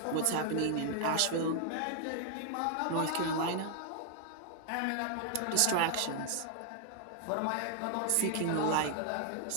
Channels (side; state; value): both; different; correlation 0.00